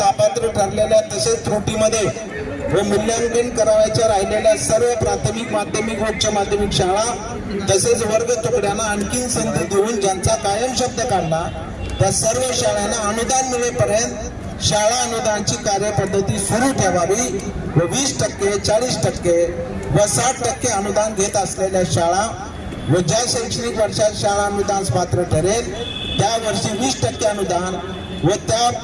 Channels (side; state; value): both; identical; correlation 1.00